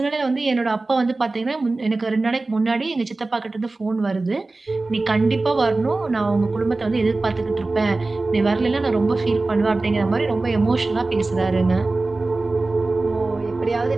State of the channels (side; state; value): left; quieter; 3.3 dB